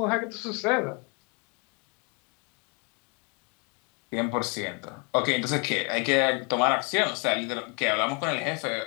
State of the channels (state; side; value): quieter; right; 33.6 dB